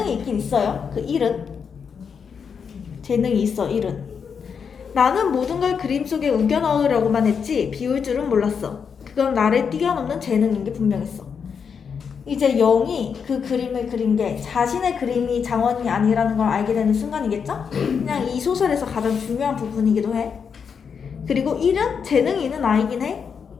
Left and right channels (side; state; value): right; quieter; 6.5 dB